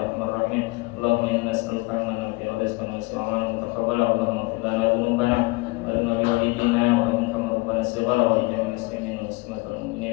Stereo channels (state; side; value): quieter; right; 25.0 dB